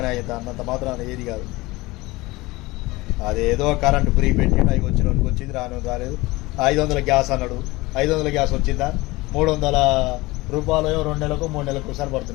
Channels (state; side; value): quieter; right; 21.2 dB